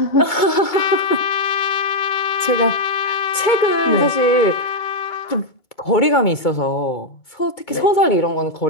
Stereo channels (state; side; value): late; right; 2.2 ms